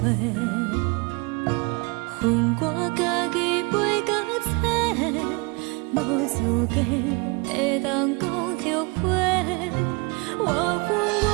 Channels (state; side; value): quieter; left; 28.3 dB